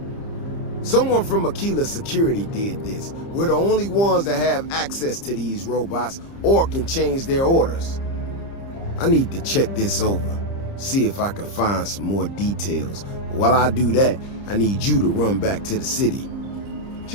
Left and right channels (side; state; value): right; late; 30 ms